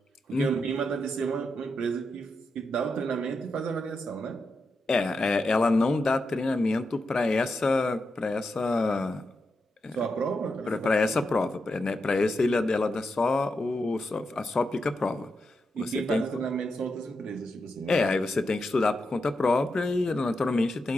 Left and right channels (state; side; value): normal; both; correlation 0.86